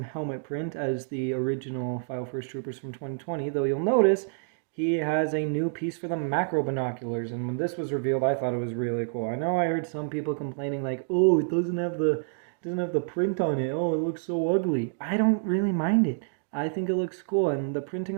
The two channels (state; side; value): silent; left; digital silence